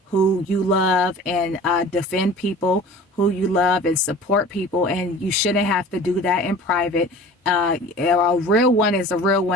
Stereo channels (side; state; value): both; normal; correlation 0.42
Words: who you love, and defend people who you love and support people. And you shouldn't have to do that in private. A real one is a real